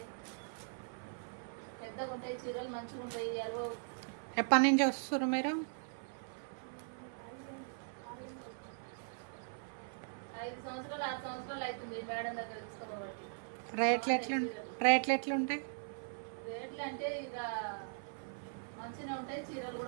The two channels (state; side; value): silent; left; 51 dB below the other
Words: పెద్దగా ఉంటాయి చీరలు, మంచిగా ఉంటాయి. ఎప్పటి నుంచి వస్తారు మీరు? 5 సంవత్సరాలు 6 సంవత్సరాలు అవుతుంది మేడం దగ్గర తీసుకోబట్టి. రేట్లు ఎట్లుంటాయి? రేట్లు అంటే ఇక మంచిగా ఉంటాయి, చీరలు